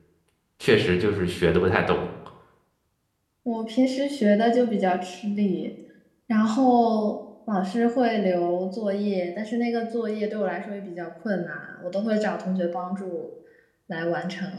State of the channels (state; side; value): identical; both; correlation 1.00